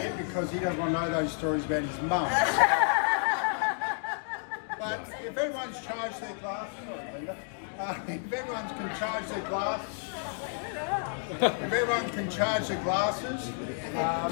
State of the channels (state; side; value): silent; right; 57 dB below the other